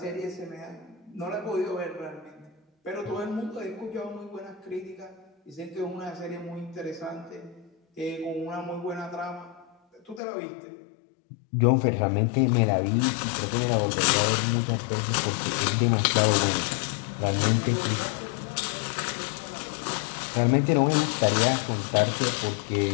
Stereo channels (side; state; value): right; drops out; at 10.2 s